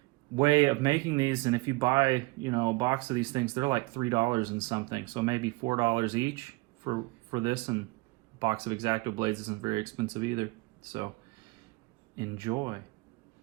way of making these, and if you buy, a box of these things, they're like $3 and something, so maybe $4 each for this, and a box of X-Acto blades isn't very expensive either. So enjoy.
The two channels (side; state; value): left; quieter; 23.5 dB